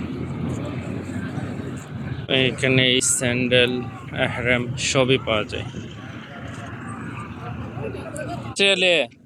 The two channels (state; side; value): identical; both; correlation 1.00